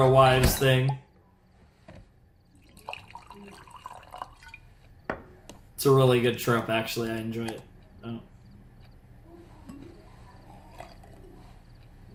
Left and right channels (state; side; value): identical; both; correlation 1.00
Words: wives thing. It's a really good trope, actually. I enjoy it. Oh.